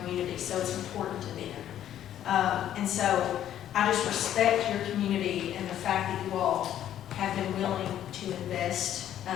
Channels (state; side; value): quieter; right; 11.2 dB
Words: so it's important to them. And so I just respect your community and the fact that you all have been willing to invest